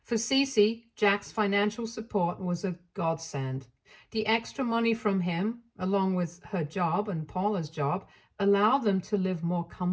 For Cece, Jack's financial support was a godsend. The extra money from him, along with her job and Paula's job, allowed them to live more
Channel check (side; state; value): both; identical; correlation 1.00